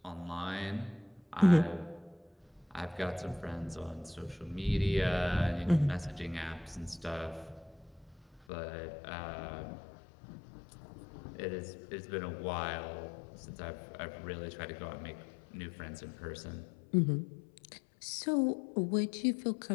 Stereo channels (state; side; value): drops out; right; at 8.5 s